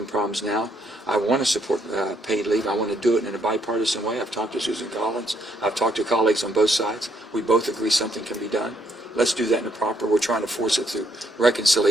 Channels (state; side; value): normal; both; correlation 0.72